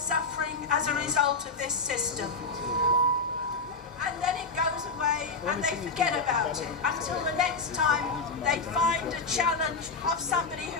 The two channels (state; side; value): quieter; right; 4.0 dB